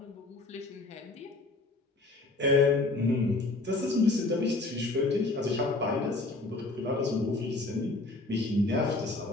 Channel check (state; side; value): quieter; right; 3.1 dB